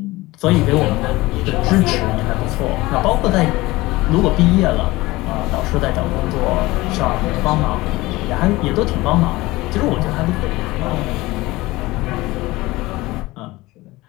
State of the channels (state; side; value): quieter; right; 19.9 dB